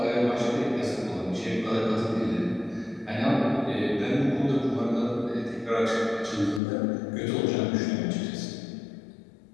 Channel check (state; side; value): drops out; right; at 6.6 s